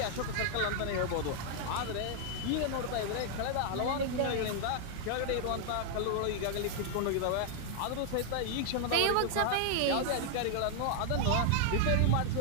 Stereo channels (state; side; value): different; both; correlation 0.00